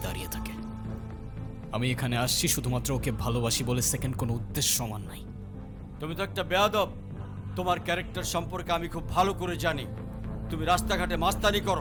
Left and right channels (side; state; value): both; identical; correlation 1.00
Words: দাঁড়িয়ে থাকে। আমি এখানে আসছি শুধুমাত্র ওকে ভালোবাসি বলে, সেকেন্ড কোনো উদ্দেশ্য সমান নাই। তুমি তো একটা বেয়াদব। তোমার ক্যারেক্টার সম্পর্কে আমি খুব ভালো করে জানি। তুমি রাস্তাঘাটে মাস্তানি